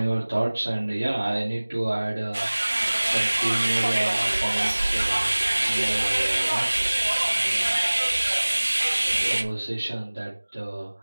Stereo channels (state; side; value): inverted; both; correlation -1.00